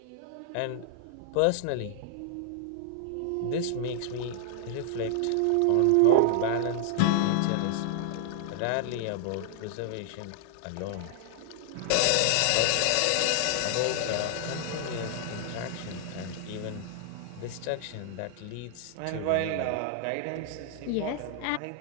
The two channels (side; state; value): both; different; correlation 0.00